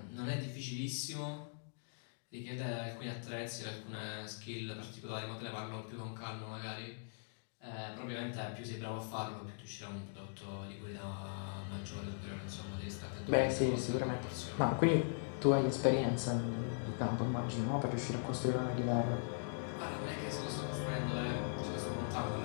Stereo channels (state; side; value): silent; right; digital silence